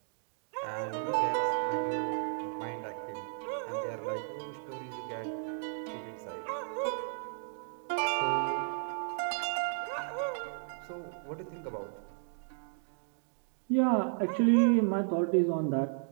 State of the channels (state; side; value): silent; left; digital silence